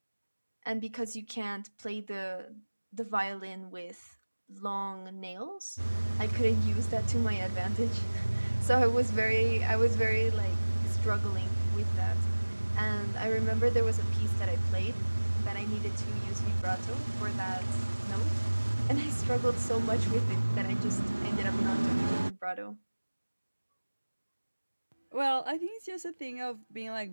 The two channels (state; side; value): inverted; both; correlation -1.00